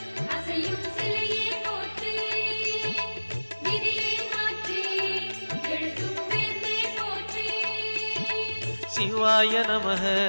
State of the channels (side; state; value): both; inverted; correlation -1.00